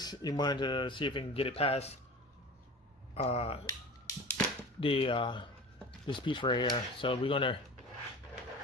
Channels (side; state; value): both; normal; correlation 0.36